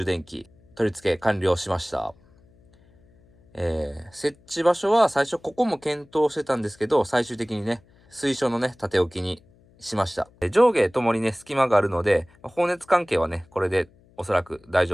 電器取り付け完了しました。設置場所は最初ここも検討してたんですけど、最終的にね、水晶のね、縦置きにしました。上下ともにね、隙間があるので、放熱関係はね、これでおそらく大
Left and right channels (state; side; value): noise; left; hum, 30 dB below the sound